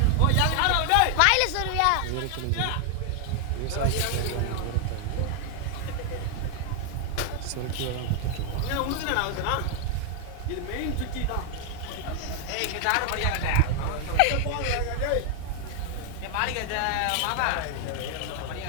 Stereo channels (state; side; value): different; both; correlation 0.00